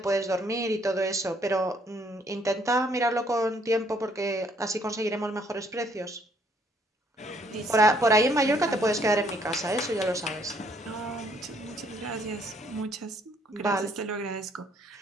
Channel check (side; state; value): both; normal; correlation 0.66